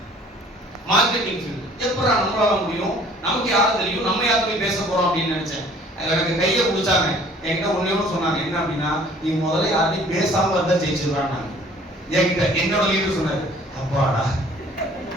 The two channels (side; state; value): both; normal; correlation 0.54